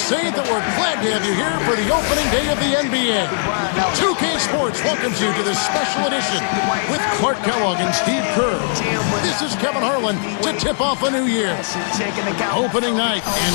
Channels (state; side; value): silent; right; digital silence